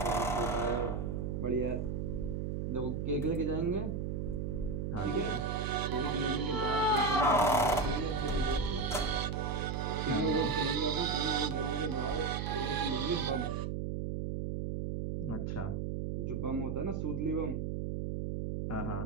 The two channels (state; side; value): noise; right; hum, 2 dB below the sound